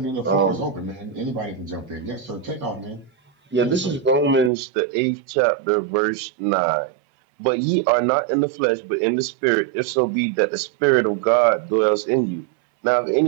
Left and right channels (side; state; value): left; drops out; at 4.5 s